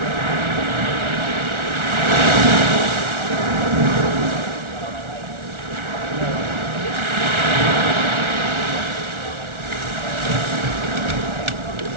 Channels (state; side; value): late; left; 1.4 ms